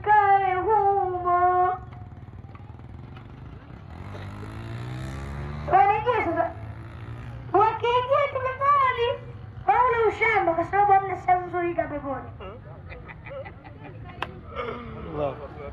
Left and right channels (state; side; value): identical; both; correlation 1.00